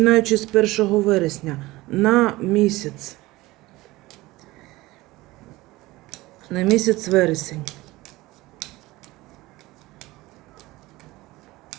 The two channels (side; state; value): left; quieter; 19.4 dB